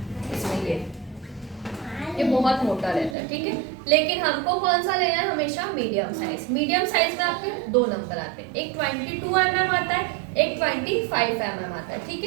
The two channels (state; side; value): drops out; left; at 3.2 s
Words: इसमें ये बहुत मोटा रहता है, ठीक है। लेकिन हमको कौन सा लेना है, हमेशा मीडियम साइज। मीडियम साइज में आपके 2 नंबर आते हैं, एक 22 आता है, एक 25 आता है, ठीक